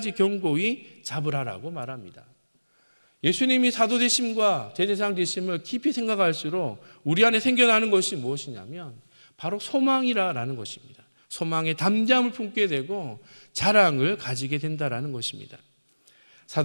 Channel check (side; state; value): both; inverted; correlation -1.00